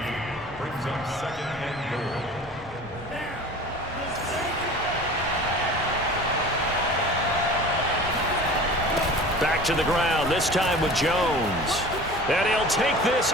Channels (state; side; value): normal; both; correlation 0.40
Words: brings up 2nd and goal. Back to the ground, this time with Jones. And he'll take this